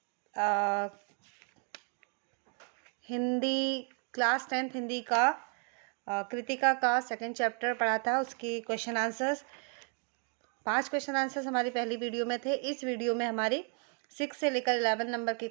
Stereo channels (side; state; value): left; quieter; 38.9 dB